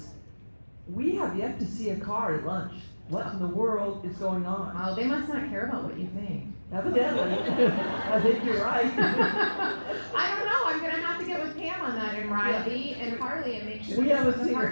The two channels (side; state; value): both; inverted; correlation -1.00